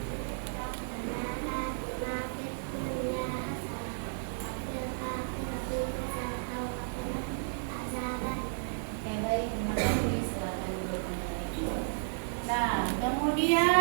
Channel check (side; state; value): left; silent; 56 dB below the other